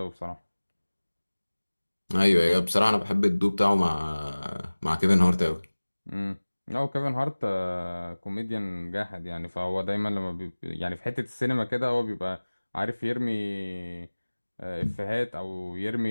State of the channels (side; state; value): both; inverted; correlation -1.00